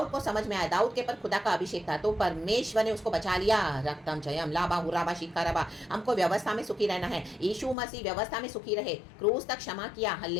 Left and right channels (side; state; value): right; drops out; at 7.8 s